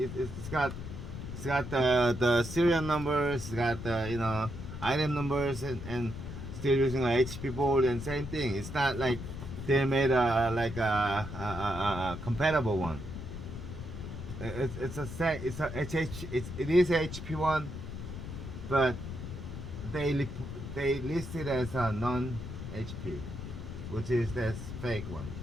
got the serial numbers, it's got the item numbers, and still using a HP board and same thing. It's not like they made a compatible one. It is HP one, but they list it as a non HP, which is that's fake one.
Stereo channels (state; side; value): noise; left; rumble, 8 dB below the sound